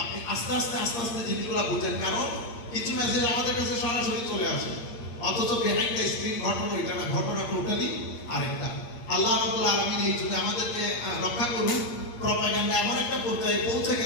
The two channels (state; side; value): late; right; 8.6 ms